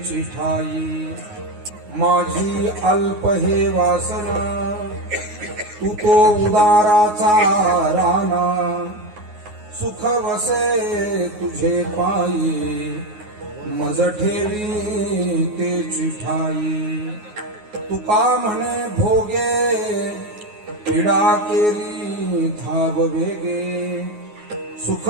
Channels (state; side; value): late; left; 9.5 ms